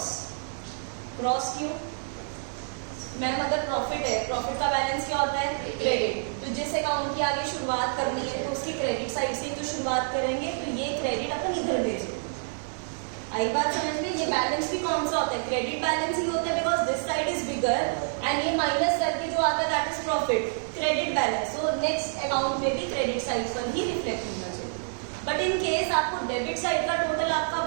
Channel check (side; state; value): left; silent; digital silence